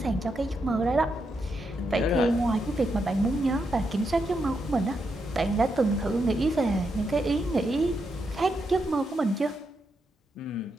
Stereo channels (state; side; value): normal; both; correlation 0.82